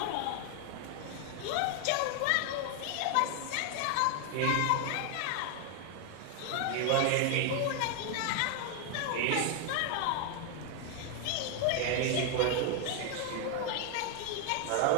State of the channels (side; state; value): both; different; correlation 0.01